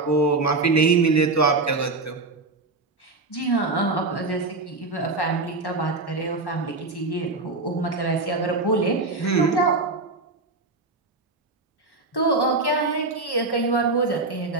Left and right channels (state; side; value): quieter; left; 3.5 dB